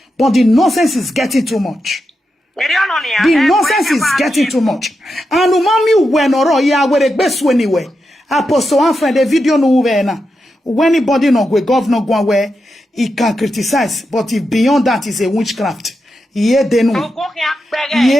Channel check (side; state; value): both; normal; correlation 0.87